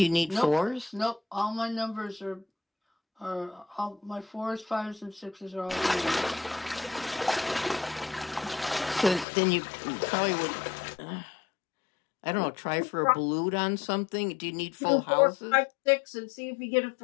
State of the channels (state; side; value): drops out; right; at 9.2 s